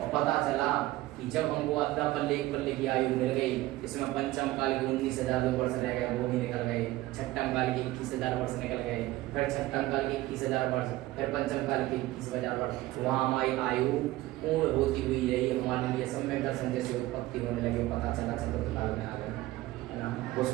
पता चला कि जब हमको अद्दा पल्ले एक पल्ले की आयु मिल गई, इसमें पंचम काल के 19,000 वर्ष रह गए, वो भी निकल गए, छठम काल के 21,000 वर्ष निकल गए, फिर छठम काल के 21,000 वर्ष, फिर पंचम काल के 21,000 वर्ष, वहाँ हमारी आयु पूर्ण होती हुई रही, हमारे लिए सम्यक दर्शन जैसे उत्पत्ति होने लगे, पता चला चतुर्थ काल में आ गए, है ना,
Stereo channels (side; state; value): left; quieter; 17.5 dB